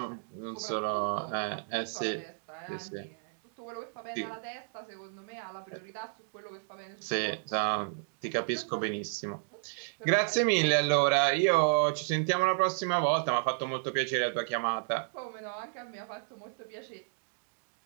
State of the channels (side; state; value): left; silent; digital silence